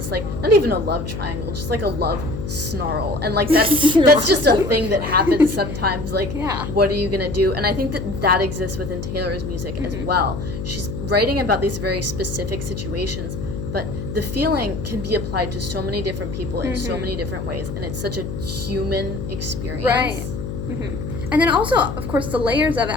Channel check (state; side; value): noise; left; hum, 6 dB below the sound